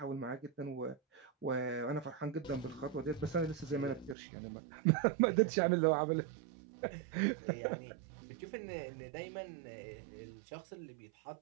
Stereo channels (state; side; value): drops out; left; at 4.2 s